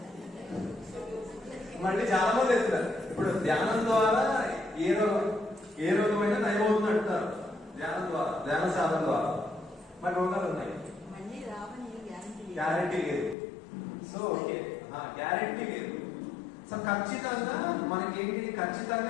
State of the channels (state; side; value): drops out; right; at 13.4 s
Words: మళ్ళీ చాలా మంది ఎత్తున్నారు. ఇప్పుడు ధ్యానం ద్వారా ఏ రోగమైనా నయమవుతుంది అంటారు. ధ్యానం ద్వారా, ధ్యాన సాధన ద్వారా. మరి రోగాలు ఉన్నాయి, గ్యారంటీ లేదు. సో ఓకే, గ్యారంటీ లేదు. సో ఖచ్చితంగా మనకేంటి,